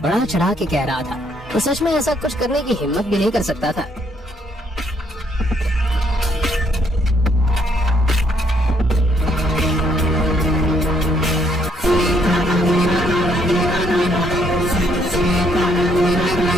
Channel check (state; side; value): normal; both; correlation 0.70